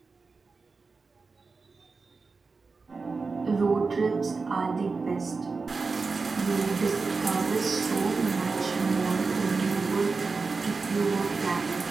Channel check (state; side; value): quieter; left; 4.3 dB